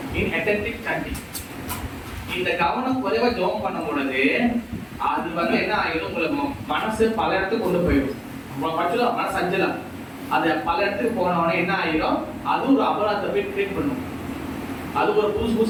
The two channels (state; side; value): identical; both; correlation 1.00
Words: inattentive chanting. இந்த கவனம் குறைவா ஜெபம் பண்ணும் பொழுது அது வந்து என்ன ஆயிடும், உங்களுக்கு மனசு பல இடத்துக்கு கொண்டு போயிடும். பட்சம் மனசு அஞ்சலாம், அது பல இடத்துக்கு போனவொடனே என்ன ஆயிடும், அது ஒரு அபராதத்தை போய் கிரியேட் பண்ணும். அது ஒரு